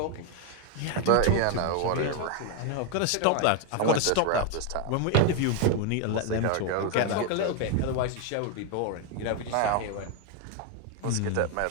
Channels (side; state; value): both; different; correlation 0.01